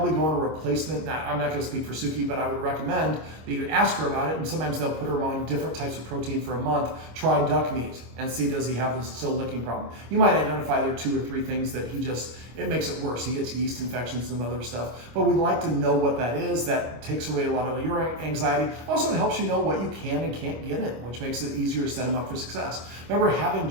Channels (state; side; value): late; left; 25 ms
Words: go on a replacement. Now, I'm not going to speak for Suki, but I would recommend that you ask her about it. And sometimes they'll put her on different types of protein for a month. Try duck meat and see, does he have this still licking problem. You might identify there are 2 or 3 things that it makes it worse. He gets yeast infections and other stuff. But we'd like to know what that is. That takes away a lot of your anxiety. Also, it helps you know what you can and can't get in, which makes it easier to set him up for success. Remember, having